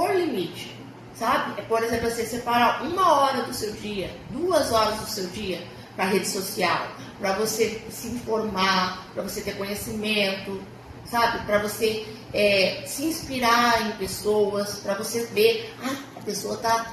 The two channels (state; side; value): identical; both; correlation 1.00